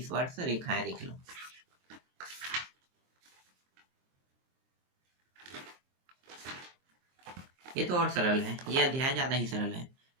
रेखाएं देख लो। ये तो और सरल है, ये अध्याय ज़्यादा ही सरल है।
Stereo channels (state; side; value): late; left; 23 ms